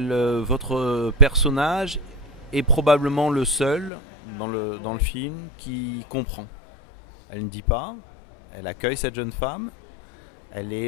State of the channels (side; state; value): right; drops out; at 3.9 s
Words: votre personnage est probablement le seul dans le film qui comprend. Elle ne dit pas, elle accueille cette jeune femme, elle